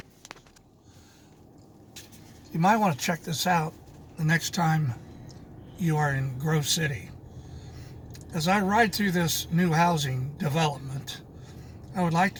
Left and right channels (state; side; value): identical; both; correlation 1.00